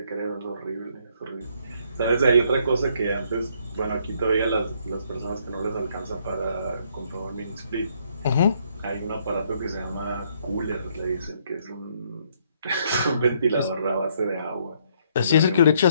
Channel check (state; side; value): inverted; both; correlation -0.69